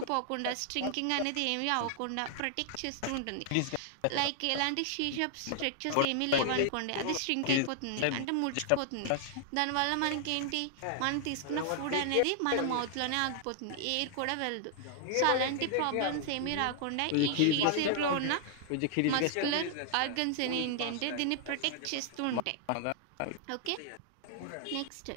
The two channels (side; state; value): both; different; correlation 0.00